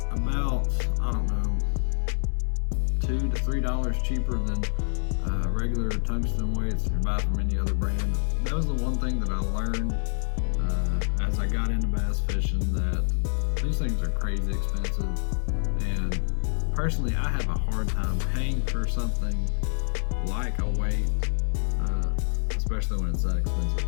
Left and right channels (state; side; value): silent; right; digital silence